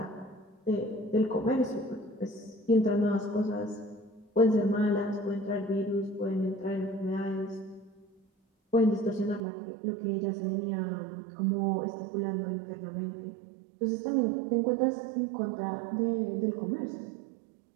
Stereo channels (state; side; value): drops out; left; at 9.4 s